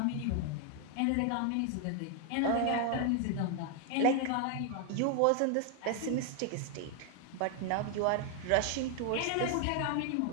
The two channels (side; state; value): both; different; correlation 0.00